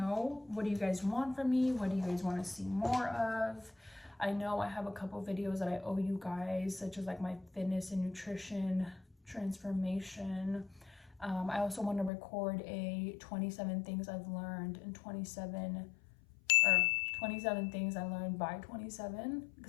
what do you guys want from me? What do you guys want to see more of? I know I have a couple videos that I owe you guys, such as like my fitness and nutrition transformation. I also want to record a 27 things I've learned in 27 things I learned by 27,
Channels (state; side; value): drops out; right; at 12.1 s